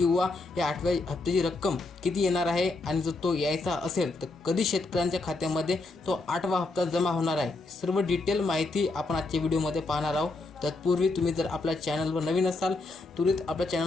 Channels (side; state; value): right; quieter; 3.3 dB